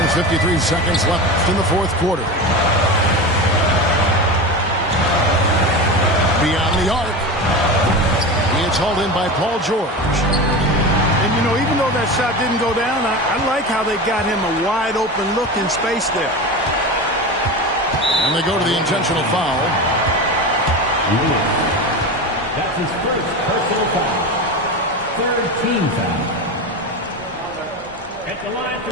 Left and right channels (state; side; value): normal; both; correlation 0.25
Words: 53 seconds left in the fourth quarter. Beyond the arc. It's hauled in by Paul George. And, you know, even though that shot didn't go down, I like how they got him a wide-open look in space there. And they go to the intentional foul. That's his first personal foul. Third team foul. At the line